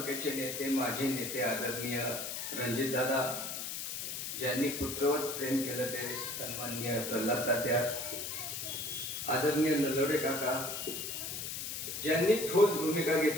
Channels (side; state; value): left; noise; hiss, 5 dB below the sound